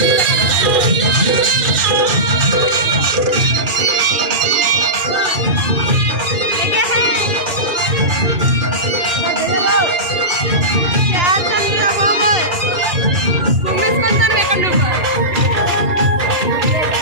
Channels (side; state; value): left; late; 2.3 ms